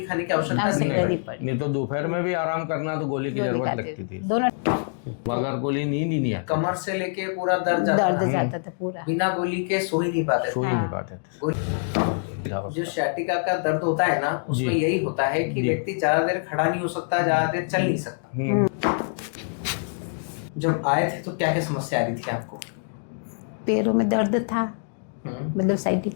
खाने की आवश्यकता आवश्यकता नहीं नहीं है। पड़ी। नहीं तो दोपहर में भी आराम करना तो गोली की गोली जरूरत खाते लगती थी। दोनों बगैर गोली नींद ही नहीं आती, कमर से लेके पूरा दर्द जाता दर्द था। जाता था पूरा। बिना गोली के सो ही नहीं पाते सो थे। ही नहीं हाँ। पाते थे। जो सciatica का दर्द होता है ना, उसमें जी। यही होता है कि जी। व्यक्ति ज्यादा देर खड़ा नहीं हो सकता, ज्यादा देर चल नहीं सकता। जब आए थे तो क्या क्या समस्या आ रही थी आपको? पैरों में दर्द था, मतलब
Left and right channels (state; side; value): silent; right; digital silence